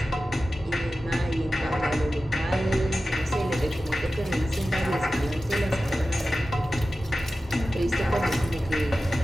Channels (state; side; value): normal; both; correlation 0.94